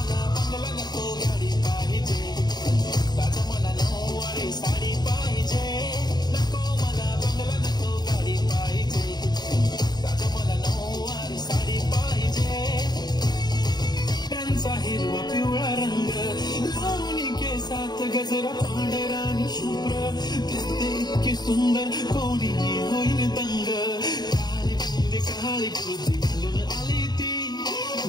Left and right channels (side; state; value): right; late; 0.20 ms